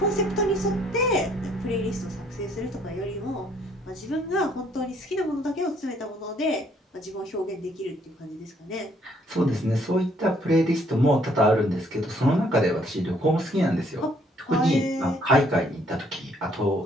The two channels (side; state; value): both; normal; correlation 0.65